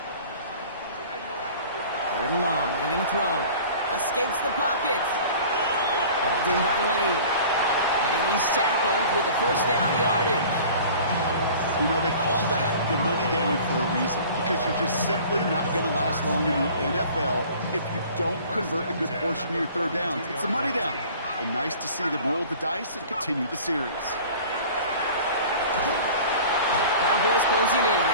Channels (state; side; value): inverted; both; correlation -0.45